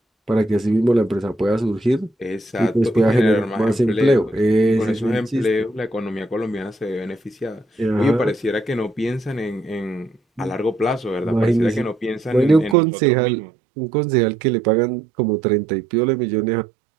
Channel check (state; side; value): drops out; left; at 12.8 s